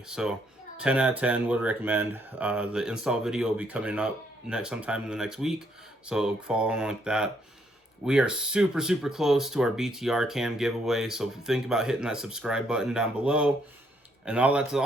So 10 out of 10 would recommend. The install video will be coming up sometime in the next week, so follow along like that. We are super close to our BTR cam giveaway, so think about hitting that subscribe button down below, and that's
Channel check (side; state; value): both; normal; correlation 0.71